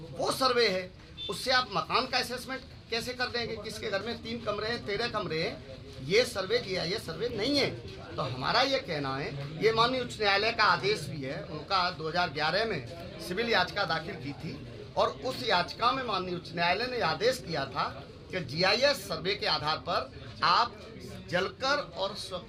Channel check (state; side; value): identical; both; correlation 1.00